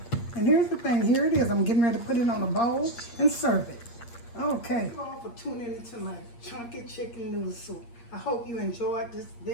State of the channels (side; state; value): right; late; 8.5 ms